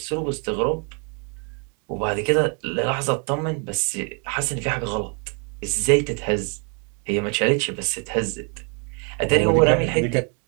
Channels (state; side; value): quieter; left; 37.8 dB